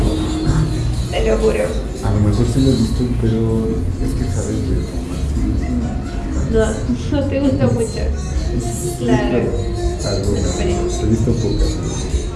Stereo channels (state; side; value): identical; both; correlation 1.00